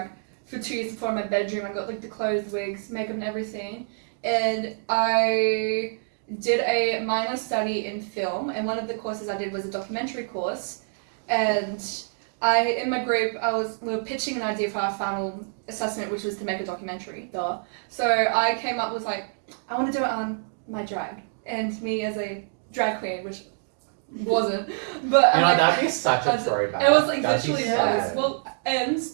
for 2 years before in my bedroom. I got like the clothes, wigs, makeup and everything. And I did a minor study in film, and one of the courses I did was a documentary course. And in my group, we were pitching an idea for our final assessment, which was to make a documentary, duh. So I came up with like, I want to do it on my drag, and me as a drag queen, which wasn't, but that'd be such a throwback. It was like That'd literally sad. well, and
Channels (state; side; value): silent; left; digital silence